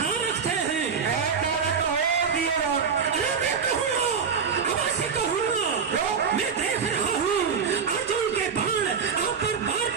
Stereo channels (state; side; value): quieter; left; 6.2 dB